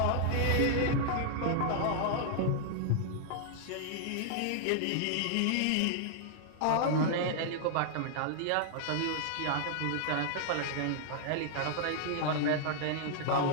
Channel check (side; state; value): both; different; correlation -0.01